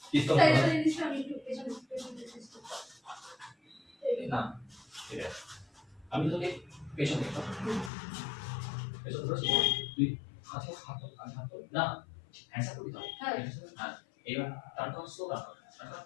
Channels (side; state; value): right; drops out; at 7.9 s